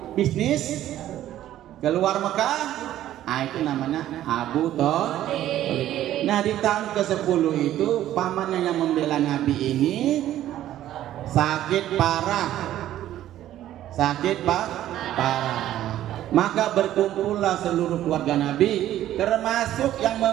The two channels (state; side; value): quieter; left; 12.8 dB